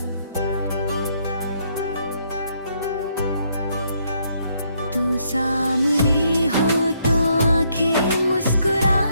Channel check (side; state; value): both; inverted; correlation -0.72